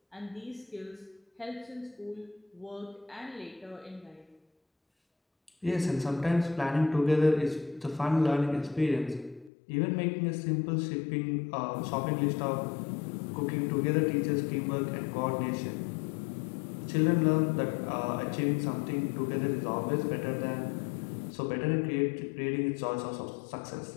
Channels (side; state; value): right; drops out; at 9.5 s